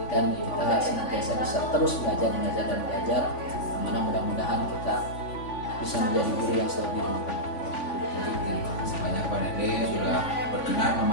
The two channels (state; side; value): late; right; 3.5 ms